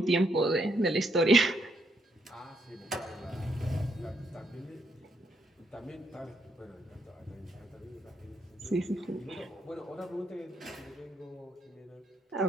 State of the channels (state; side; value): normal; both; correlation 0.75